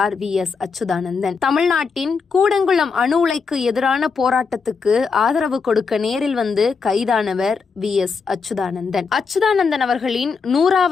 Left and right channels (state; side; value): quieter; right; 5.2 dB